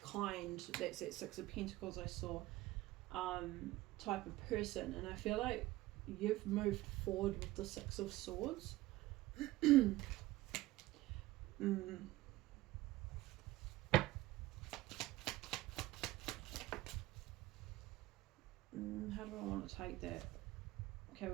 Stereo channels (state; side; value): quieter; left; 17.7 dB